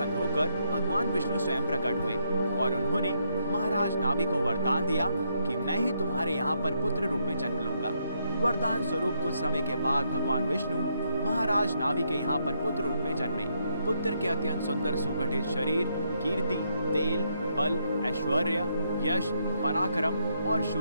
होकर भगवान विष्णु स्वयं प्रकट हुए और उन्होंने महाराज नाभि को वरदान दिया कि मैं ही तुम्हारे यहाँ पर पुत्र रूप में जन्म लूंगा। वरदान स्वरूप कुछ समय के बाद भगवान विष्णु महाराज नाभि के यहाँ पर पुत्र रूप में जन्मे। पुत्र के अत्यंत सुंदर सुगठित शरीर, कीर्ति, तेल, बल, ऐश्वर्य, यश, पराक्रम और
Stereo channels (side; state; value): both; inverted; correlation -0.76